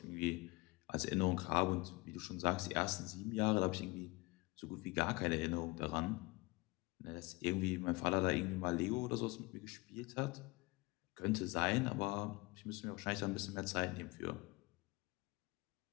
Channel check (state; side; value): quieter; right; 24.0 dB